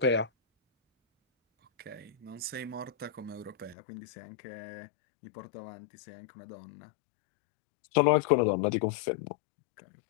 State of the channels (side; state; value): right; drops out; at 3.8 s